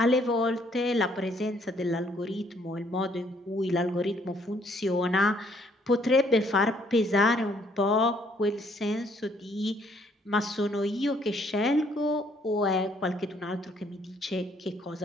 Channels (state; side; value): normal; both; correlation 0.66